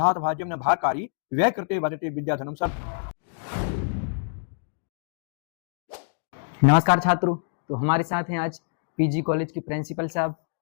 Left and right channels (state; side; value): silent; right; digital silence